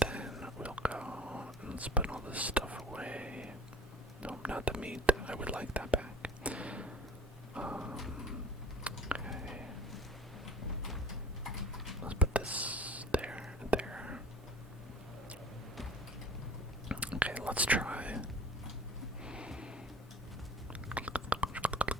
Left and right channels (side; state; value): both; normal; correlation 0.45